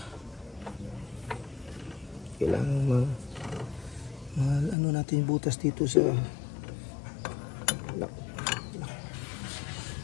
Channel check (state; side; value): drops out; right; at 4.8 s